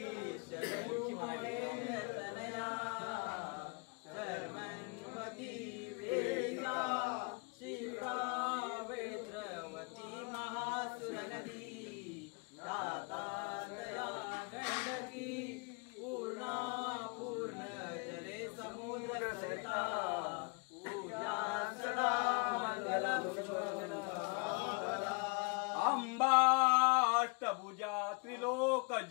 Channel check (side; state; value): right; quieter; 32.8 dB